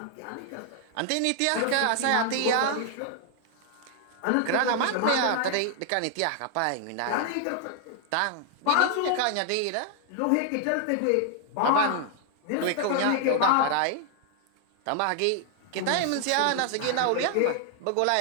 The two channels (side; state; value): both; different; correlation 0.00